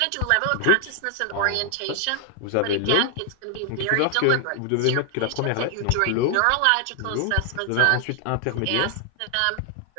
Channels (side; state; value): both; different; correlation 0.00